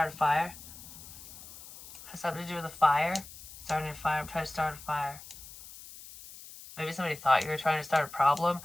a fire. It has something to do with a fire. Starting a fire. I'm trying to start a fire. Maybe somebody thought you were trying to start a problem,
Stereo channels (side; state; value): left; noise; hiss, 16 dB below the sound